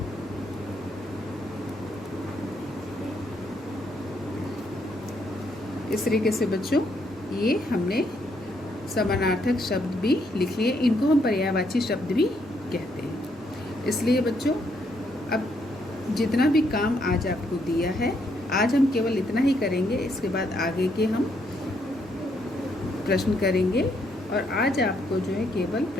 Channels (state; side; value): normal; both; correlation 0.74